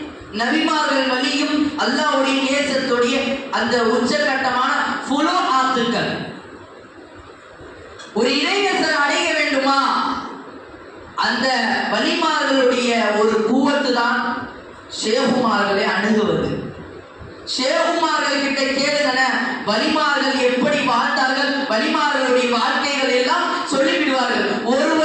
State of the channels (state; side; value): identical; both; correlation 1.00